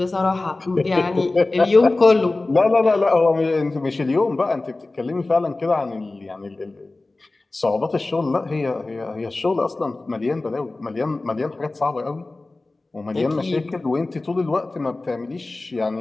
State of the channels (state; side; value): quieter; right; 3.1 dB